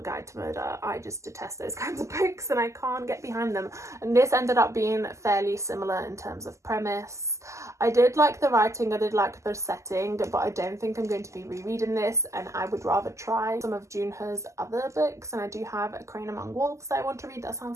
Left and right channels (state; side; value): late; left; 0.14 ms